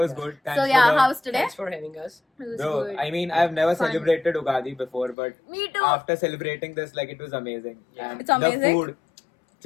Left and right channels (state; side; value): drops out; right; at 5.2 s